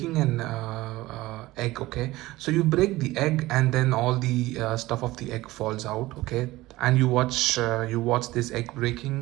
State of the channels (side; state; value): left; quieter; 18.4 dB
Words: an egg. Okay, so you break the egg and then all the stuff of the egg falls out. Okay, and you watch this egg